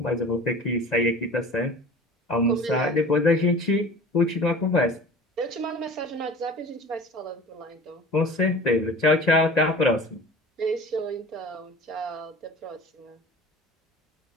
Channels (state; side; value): normal; both; correlation 0.40